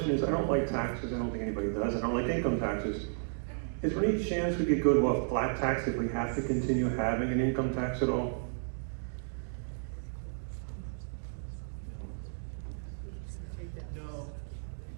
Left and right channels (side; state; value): left; silent; digital silence